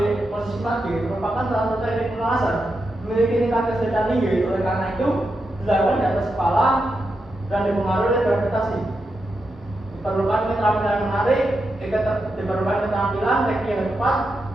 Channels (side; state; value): both; normal; correlation 0.86